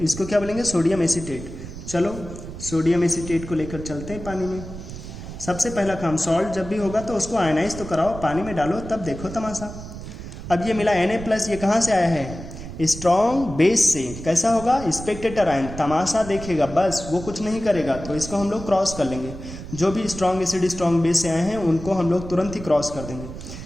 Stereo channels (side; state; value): right; noise; rumble, 11 dB below the sound